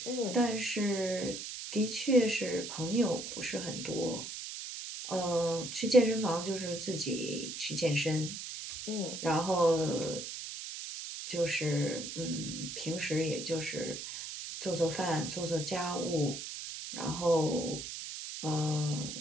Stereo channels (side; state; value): right; noise; hiss, 7 dB below the sound